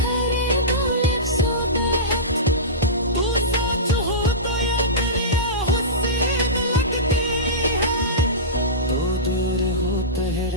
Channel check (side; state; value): both; normal; correlation -0.19